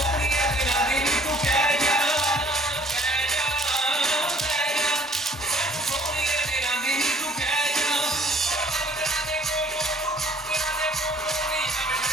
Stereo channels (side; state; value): both; normal; correlation 0.57